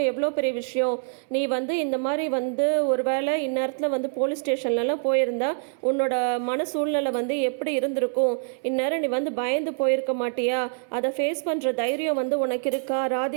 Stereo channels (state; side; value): silent; left; 61 dB below the other